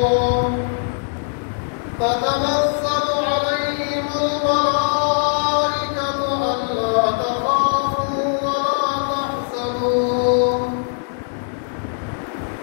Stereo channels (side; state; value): right; silent; digital silence